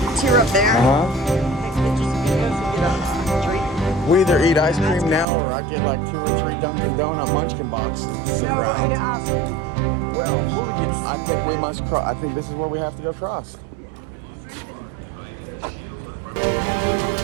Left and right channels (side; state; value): left; drops out; at 5.2 s